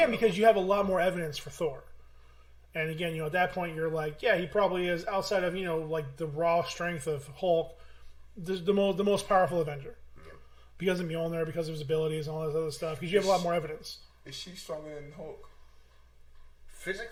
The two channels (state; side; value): identical; both; correlation 1.00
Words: because you have a lot more evidence for Thor. And again, at that point, you're he probably is, outside of, the raw strength of Hulk, the most powerful Avenger. Yeah. Because of Mjolnir, because of his abilities and all that other stuff. Because you have a lot more evidence. Is she stronger than Hulk?